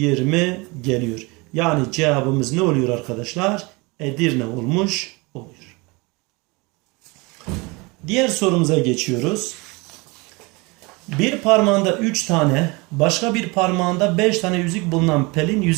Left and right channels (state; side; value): quieter; left; 26.3 dB